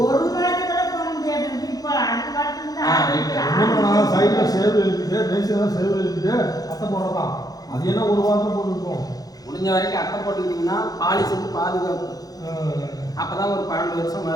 ஒரு மாதத்துல போக முடியாது. இப்போ அடுத்த வாரத்தில் சைடில் சேவ் இருக்குது, பேசியெல்லாம் சேவ் இருக்குது, அட்டை போடலாம். அது என்ன ஒரு வாரத்தில் போட்டுருக்கோம். முடிஞ்ச வரைக்கும் அட்டை போட்டுக்கிட்டிங்கன்னா பாலிஷுக்கு பாதுகாப்பு. அப்பதான் ஒரு 12 வருஷம்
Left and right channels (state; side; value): late; right; 0.18 ms